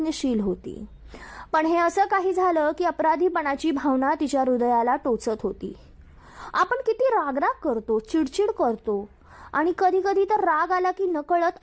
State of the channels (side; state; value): both; identical; correlation 1.00